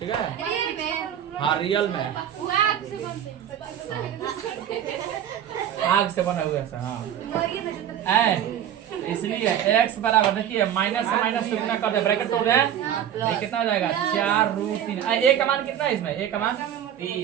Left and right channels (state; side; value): quieter; left; 10.1 dB